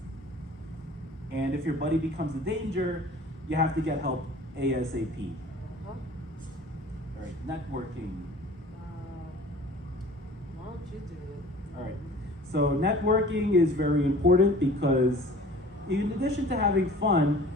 And if your buddy becomes a danger, you have to get help ASAP. Huh? All right, networking. Why don't you do it? All right, so networking is very important because in addition to having fun,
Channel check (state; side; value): normal; both; correlation 0.46